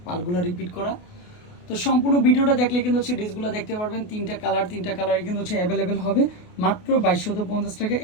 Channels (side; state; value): right; late; 28 ms